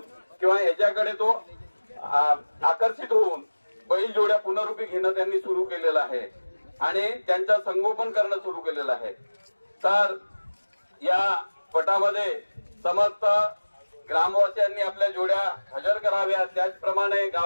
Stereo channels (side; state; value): both; inverted; correlation -1.00